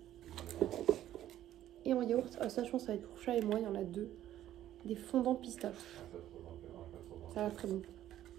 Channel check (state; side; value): quieter; left; 12.5 dB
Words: Et en yaourt, ça je pense que ça va être pour Chat et moi, il y en a 2. Des fondants pistache. Ça a l'air très bon.